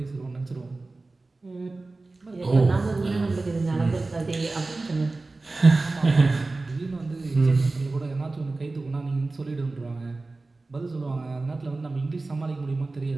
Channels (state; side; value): quieter; left; 3.3 dB